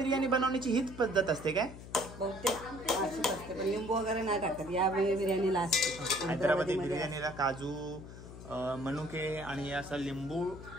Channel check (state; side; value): noise; left; hum, 14 dB below the sound